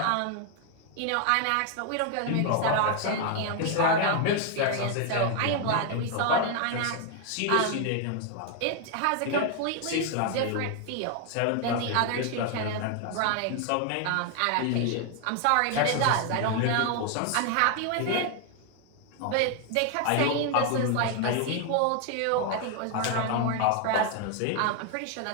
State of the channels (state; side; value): different; both; correlation 0.00